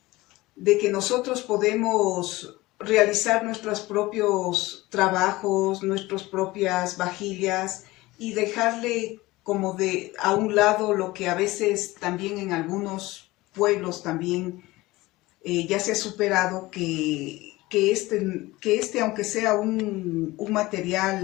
nosotros podemos realizar nuestros propios trabajos, nuestras propias vajillas, y dejarle como a un lado lo que a veces también en algunos pueblos también ya se ha superado, que aunque sea un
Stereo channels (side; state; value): right; quieter; 19.7 dB